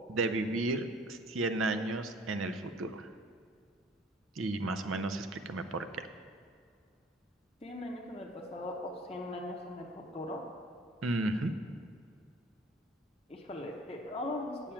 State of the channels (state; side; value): normal; both; correlation 0.50